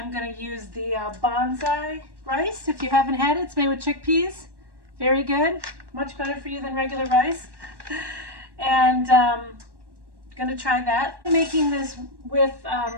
going to use the Banza rice. If you haven't had it, it's made with chickpeas. Very good, much better for you than regular rice. And going to try that. I'm making this with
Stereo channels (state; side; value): late; left; 1.1 ms